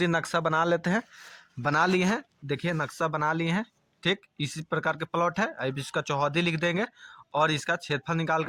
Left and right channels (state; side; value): identical; both; correlation 1.00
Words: नक्शा बना लेते हैं। बना लिए हैं, देखिए नक्शा बना लिए हैं। ठीक, इसी प्रकार के प्लॉट है। अब इसका चौहद्दी लिख देंगे और इसका क्षेत्रफल निकाल